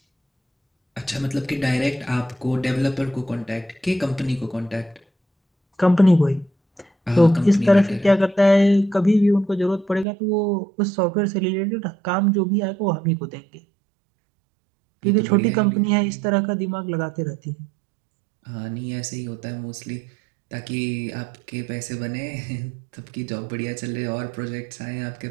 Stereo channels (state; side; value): drops out; left; at 10.1 s